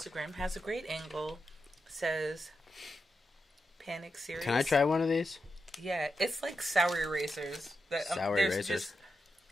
has a great angle. Says Panic Series. Can I try one of these? Yeah, it's like sour erasers. Sour they're erasers. just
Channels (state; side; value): normal; both; correlation 0.87